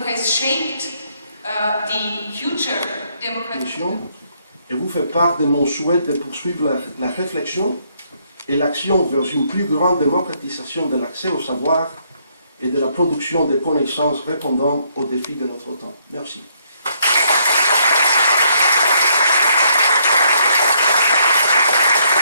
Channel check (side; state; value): both; inverted; correlation -0.71